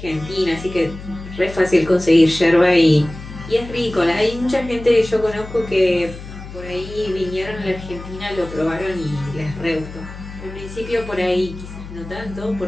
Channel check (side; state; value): left; noise; hum, 13 dB below the sound